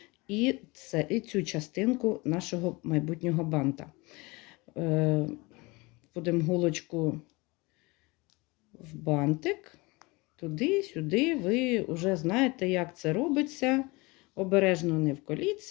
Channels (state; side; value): quieter; right; 24.7 dB